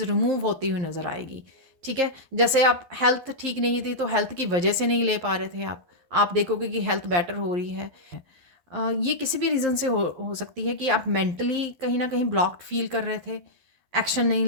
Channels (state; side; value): late; left; 11 ms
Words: रिमूव होती हुई नज़र आएगी। ठीक है, जैसे आप हेल्थ ठीक नहीं थी तो हेल्थ की वजह से नहीं ले पा रहे थे आप देखोगे कि हेल्थ बेटर हो रही है। ये किसी भी रीज़न से हो सकती है कि आप मेंटली कहीं ना कहीं ब्लॉक्ड फील कर रहे थे, एक्शन नहीं